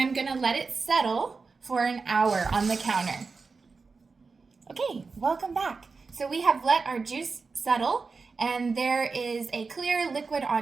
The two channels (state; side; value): quieter; left; 4.5 dB